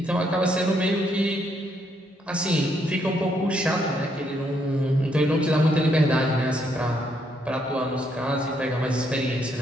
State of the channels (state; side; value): normal; both; correlation 0.74